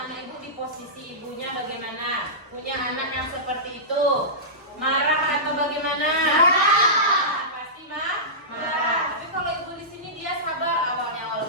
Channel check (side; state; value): both; normal; correlation -0.18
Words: ibu di posisi ibunya bagaimana? Punya anak yang seperti itu, marah atau bagaimana? Pasti marah. Tapi kalau ibu di sini dia sabar awalnya,